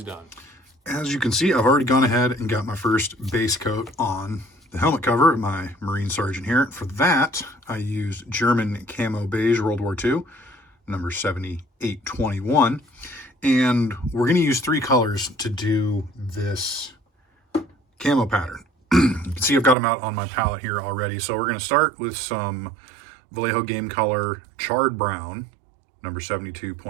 done. As you can see, I've already gone ahead and got my first base coat on the helmet cover of my Marine Sergeant here. For that, I used German Camo Beige World War II, number 7821. And we're going to use 3 colors to do this camo pattern. You can see I've got them out on my palette here already. So we're going to start with some Vallejo Game Color Charred Brown, number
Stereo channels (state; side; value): drops out; left; at 19.8 s